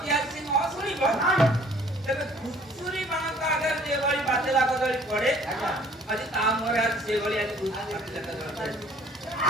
ଆଜି ସେ ନ ଶୁଣିବ ତେବେ ଘୁଷୁରୀ ମାନଙ୍କ ଆଗରେ ଯେଭଳି ବାତେଲା କଦଳୀ ପଡେ ଆଜି ତା ମୁହଁରେ ଆଜି ସେଭଳି ଆଜି ବାତେଲା କଦଳୀ ପଡେ।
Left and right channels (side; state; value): both; normal; correlation 0.55